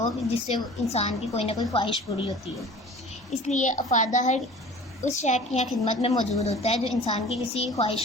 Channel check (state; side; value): normal; both; correlation 0.43